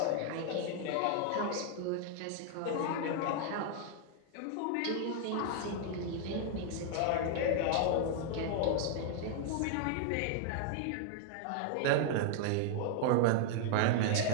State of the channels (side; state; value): both; different; correlation 0.00